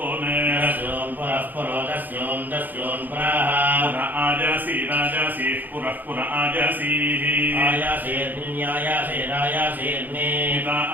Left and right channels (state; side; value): late; left; 0.086 ms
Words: ओने तस्यों पुरः पुरो तस्यों तस्यों पुरः पुरा आजासी राजासी पुरः पुरा आजासीः आयासेर्नियायासेरायासेर्ने निता